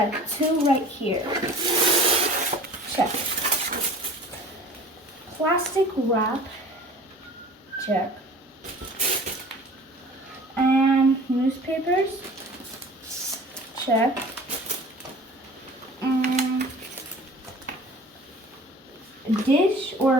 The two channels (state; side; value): normal; both; correlation 0.44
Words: 2 right here. Check. Plastic wrap. Check. And newspapers. Check. And dish